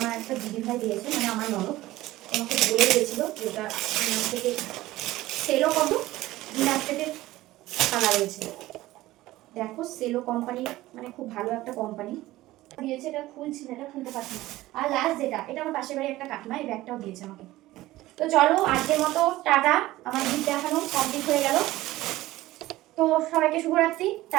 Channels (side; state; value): left; quieter; 17.0 dB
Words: একটা দিদি ভাই দিয়েছে, মানে আমার ননদ আমাকে বলে দিয়েছিল যে ওটা ডিনার থেকে সেলও কত ডিনার থেকে খানা রয়েছে। দেখো সেলো কোম্পানি মানে খুব ভালো একটা কোম্পানি দিয়েছে, এটা খুলছি না, এটা খুলতে পারছি না। আর লাস্ট যেটা, এটা আমার পাশের বাড়ি একটা কাকিমা এই ব্যাগটাও দিয়েছে আমাকে। তো চলো আজকের মতো টাটা, আমার গিফট দেখানো কমপ্লিট হয়ে গেল। তো সবাইকে শুভরাত্রি,